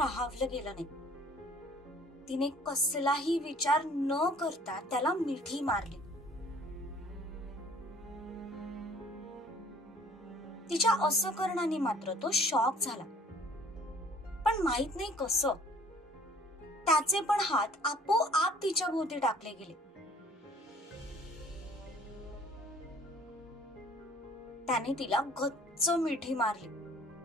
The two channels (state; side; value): normal; both; correlation 0.54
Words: गेलं नाही. तिने कसलाही विचार न करता त्याला मिठी मारली. तिच्या असं करण्याने मात्र तो शॉक झाला, पण माहित नाही कसं त्याचे पण हात आपोआप तिच्या भोवती टाकले गेले. त्याने तिला गच्च मिठी मारली,